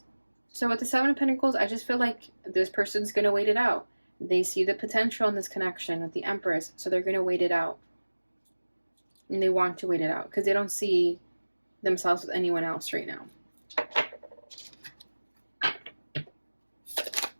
So with the Seven of Pentacles, I just feel like this person's going to wait it out. They see the potential in this connection with the Empress, so they're going to wait it out. And they want to wait it out because they don't see themselves with anyone else right now.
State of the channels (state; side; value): inverted; both; correlation -1.00